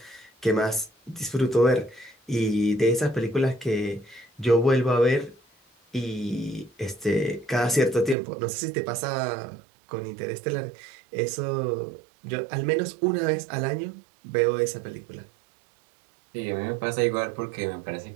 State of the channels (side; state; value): left; drops out; at 8.2 s